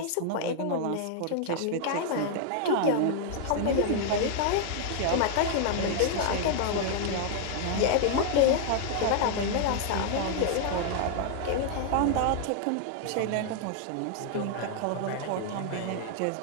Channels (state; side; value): different; both; correlation 0.00